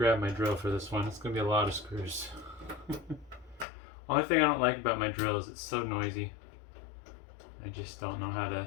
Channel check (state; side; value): drops out; right; at 3.7 s